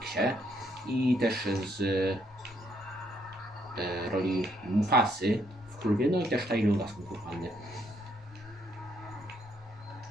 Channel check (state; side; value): normal; both; correlation 0.72